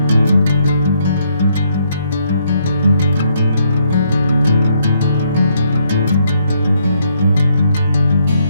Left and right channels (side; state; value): both; inverted; correlation -0.72